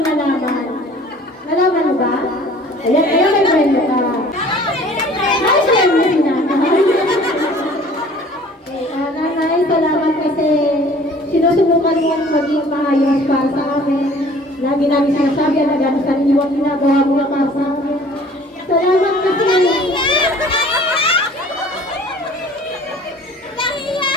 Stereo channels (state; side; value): normal; both; correlation 0.50